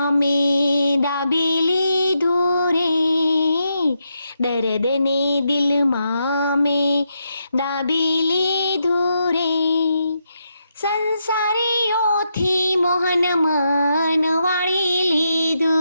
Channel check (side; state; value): both; inverted; correlation -0.82